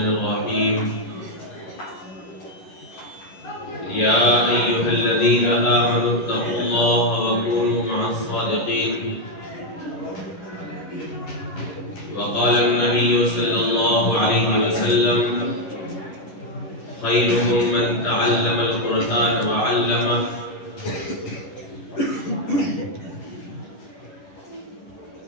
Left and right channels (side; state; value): right; late; 11 ms